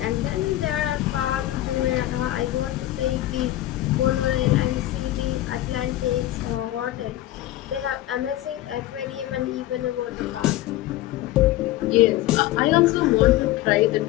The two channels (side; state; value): right; quieter; 15.1 dB